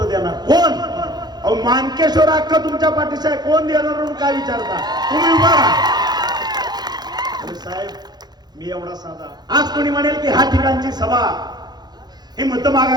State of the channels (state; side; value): late; left; 0.20 ms